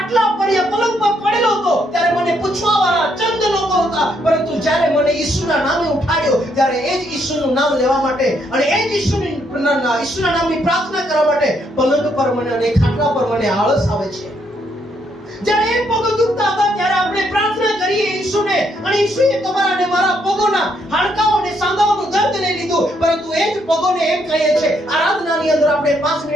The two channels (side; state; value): both; normal; correlation 0.73